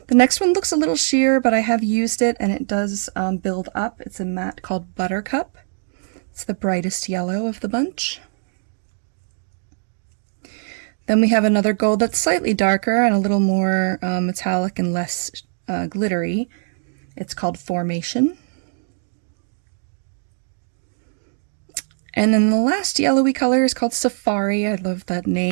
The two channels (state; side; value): silent; left; digital silence